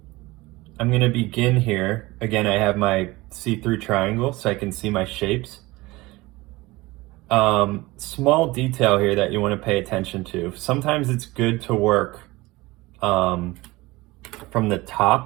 I'm going to begin here. Again, I have my see-through triangle so I can see my shapes. Small detail here that you want to pay attention to. Sometimes it's good to work from the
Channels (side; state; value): left; quieter; 20.9 dB